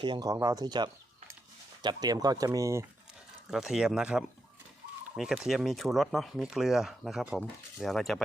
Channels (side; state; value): both; normal; correlation 0.84